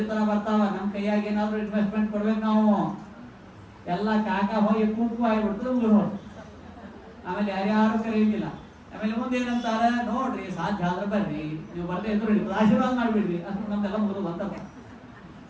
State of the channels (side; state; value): both; identical; correlation 1.00